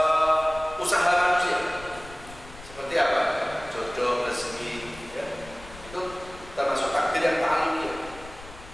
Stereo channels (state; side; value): noise; left; rumble, 18 dB below the sound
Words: usaha manusia. Seperti apa? Jodoh, rezeki, ya. Itu termasuk takdir yang ta'alluqiyah.